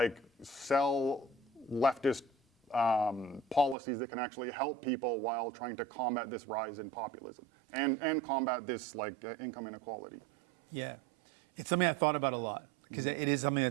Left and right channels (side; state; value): left; drops out; at 3.8 s